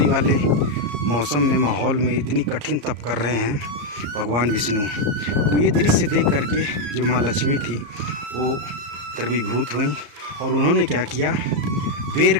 वाले मौसम में, माहौल में इतनी कठिन तप कर रहे हैं भगवान विष्णु, तो ये दृश्य देख करके जो माँ लक्ष्मी थी वो द्रवीभूत हुई और उन्होंने क्या किया, बेर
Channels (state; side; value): late; left; 34 ms